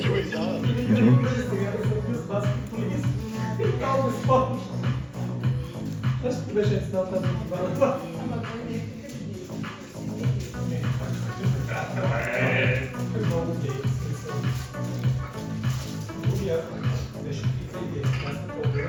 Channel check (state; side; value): identical; both; correlation 1.00